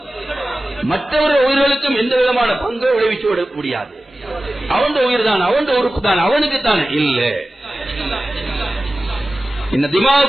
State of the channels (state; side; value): normal; both; correlation 0.96